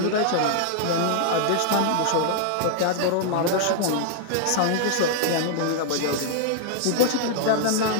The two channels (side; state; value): both; different; correlation 0.00